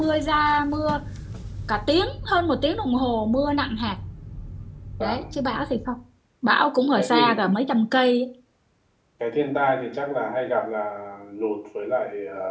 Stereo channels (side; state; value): both; identical; correlation 1.00